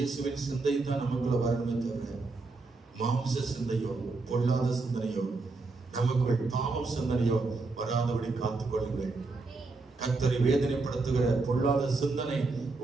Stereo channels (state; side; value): quieter; left; 3.7 dB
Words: சிந்தை தான் நமக்குள்ள வரணுமே தவிர மாம்ச சிந்தையோ பொல்லாத சிந்தனையோ நமக்குள் பாவம் சிந்தனையோ வராதபடி காத்துக் கொள்ளுங்கள். கர்த்தரை வேதனைப்படுத்துகிற பொல்லாத சிந்தனை